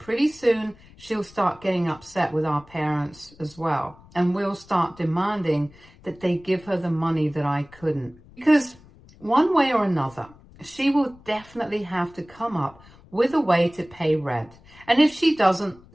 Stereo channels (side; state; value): left; noise; rumble, 25 dB below the sound